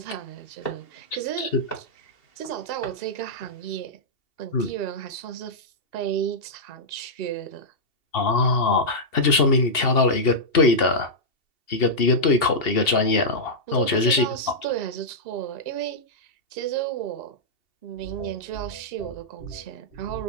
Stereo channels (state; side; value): late; right; 2.7 ms